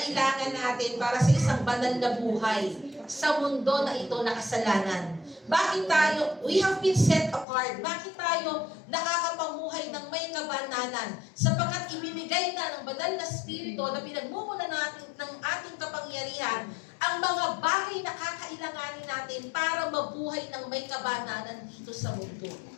natin para sa isang banal na buhay sa mundo na ito na kasalanan. Bakit tayo, we have been set apart. Bakit tayo nakakapamuhay ng may kabanalan? Sapagkat ibinigay na ng banal na spirito na pinagmumula natin ng ating kapangyarihan ang mga bagay na kakailanganin natin para mabuhay ng may kabanalan dito sa mundo.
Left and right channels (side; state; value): right; drops out; at 7.5 s